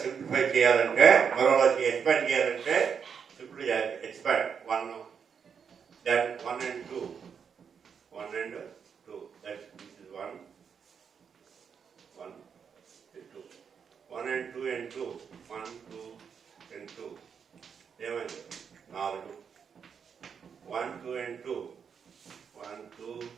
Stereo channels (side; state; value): left; quieter; 6.8 dB